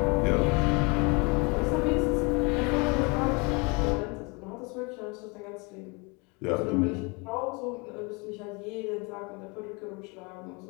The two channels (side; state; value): right; quieter; 29.3 dB